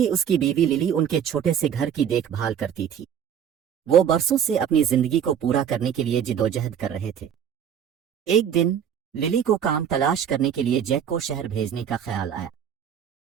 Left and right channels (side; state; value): left; quieter; 8.7 dB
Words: اس کی بیوی للی ان کے چھوٹے سے گھر کی دیکھ بھال کرتی تھی۔ وہ برسوں سے اپنی زندگی کو پورا کرنے کے لیے جدوجہد کر رہے تھے۔ ایک دن للی کو کام تلاش کرنے کے لیے جیک کو شہر بھیجنے کا خیال آیا۔